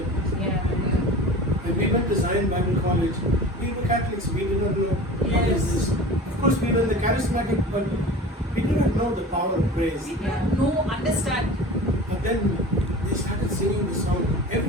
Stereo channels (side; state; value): both; normal; correlation 0.37